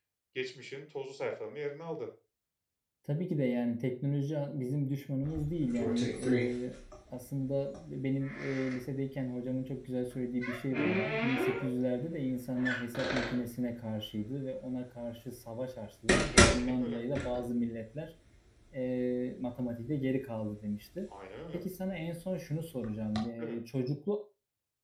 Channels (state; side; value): identical; both; correlation 1.00